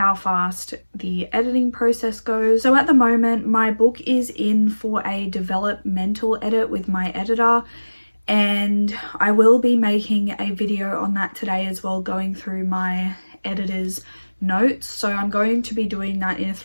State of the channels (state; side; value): inverted; both; correlation -1.00